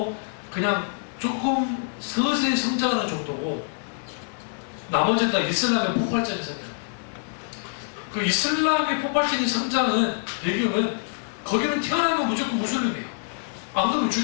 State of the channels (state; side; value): silent; right; digital silence